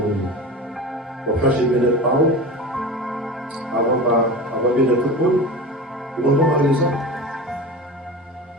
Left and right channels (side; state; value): both; normal; correlation 0.30